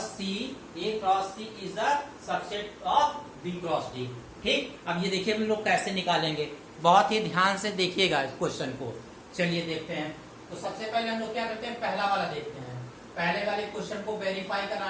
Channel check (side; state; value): both; identical; correlation 1.00